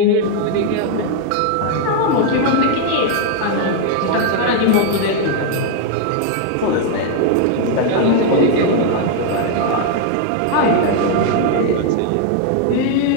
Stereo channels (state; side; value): different; both; correlation 0.00